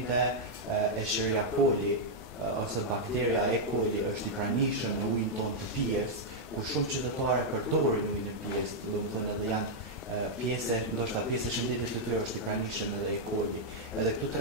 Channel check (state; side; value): normal; both; correlation -0.04